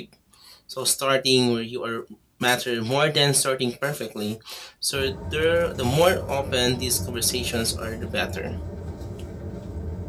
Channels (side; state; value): both; identical; correlation 1.00